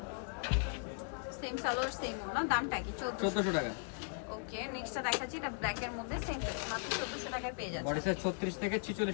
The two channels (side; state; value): right; silent; 53 dB below the other